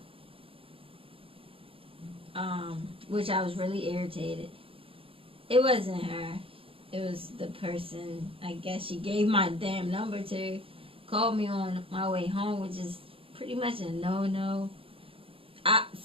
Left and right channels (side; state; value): left; late; 0.27 ms